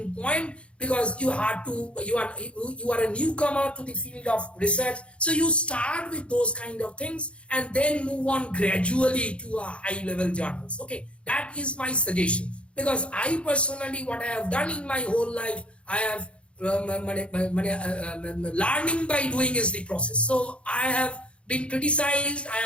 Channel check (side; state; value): right; late; 0.059 ms